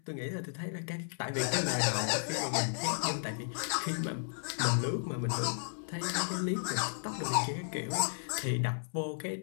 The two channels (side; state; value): right; silent; 55 dB below the other